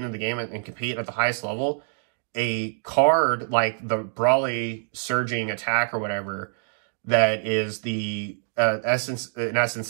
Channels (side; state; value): left; silent; digital silence